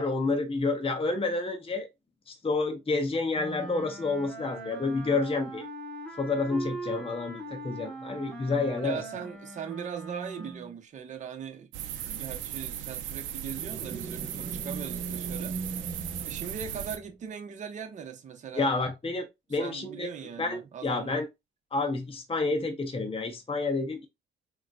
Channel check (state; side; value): normal; both; correlation 0.50